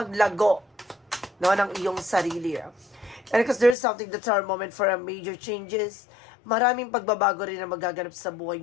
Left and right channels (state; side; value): drops out; right; at 3.8 s